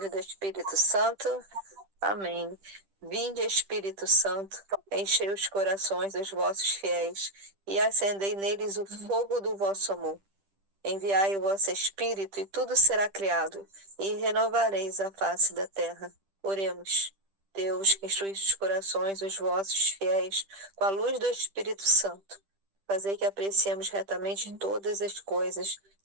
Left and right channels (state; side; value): late; left; 10 ms